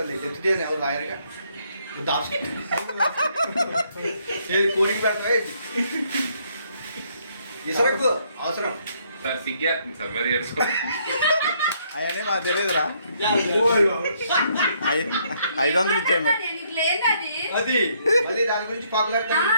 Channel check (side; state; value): both; inverted; correlation -0.70